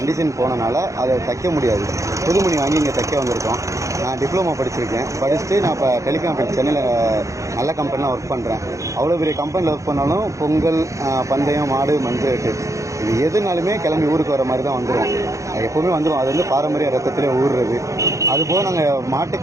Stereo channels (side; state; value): left; late; 0.15 ms